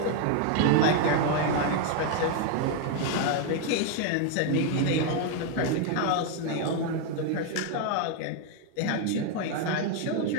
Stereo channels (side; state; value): both; different; correlation 0.01